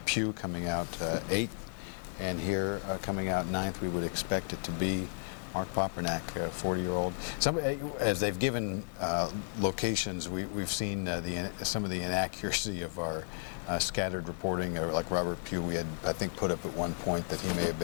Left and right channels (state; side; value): silent; right; digital silence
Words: Pugh coming out eighth. And here, coming out ninth, we would expect it to be Mark Papernak, a 40-year-old. As they've given locations, we've seen some of the inaccuracy of our scattered reporting. Like Robert Pugh, we had, I think, put up at one point that he may have